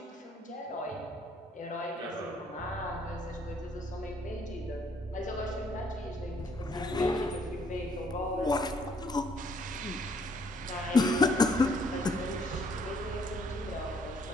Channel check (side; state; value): both; normal; correlation 0.65